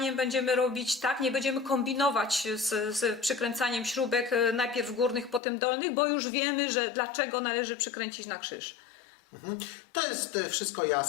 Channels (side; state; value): right; drops out; at 5.4 s